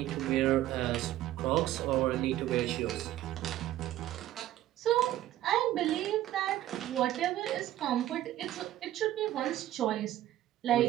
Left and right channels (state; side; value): quieter; left; 13.7 dB